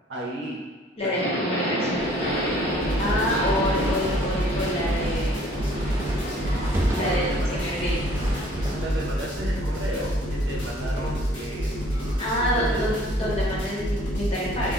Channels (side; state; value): both; normal; correlation 0.57